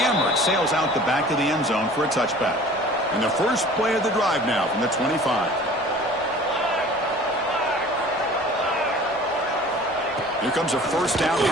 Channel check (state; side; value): noise; left; rumble, 28 dB below the sound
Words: Sails out the back of the end zone for a touchback. And the first play of the drive now from the 25. Here comes a first down